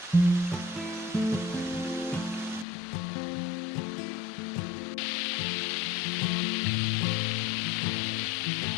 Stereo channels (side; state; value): right; drops out; at 2.7 s